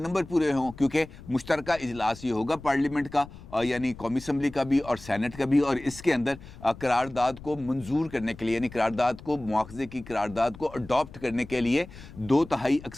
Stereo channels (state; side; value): noise; left; rumble, 17 dB below the sound